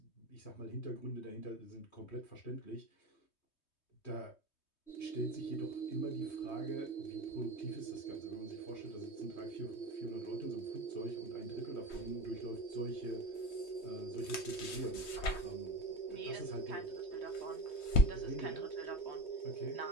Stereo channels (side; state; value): right; late; 3.2 ms